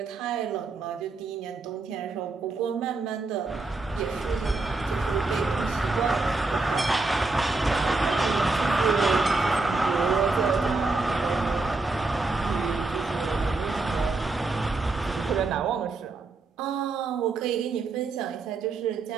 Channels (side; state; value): left; quieter; 3.6 dB